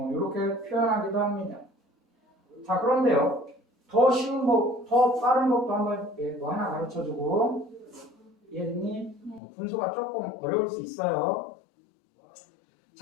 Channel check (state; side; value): drops out; right; at 9.4 s